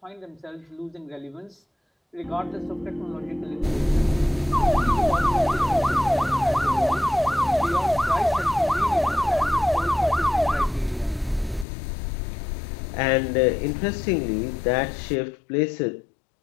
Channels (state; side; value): drops out; right; at 11.7 s